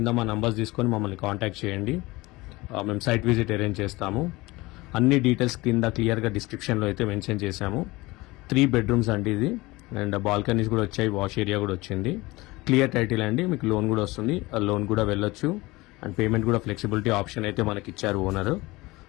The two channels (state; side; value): quieter; right; 21.4 dB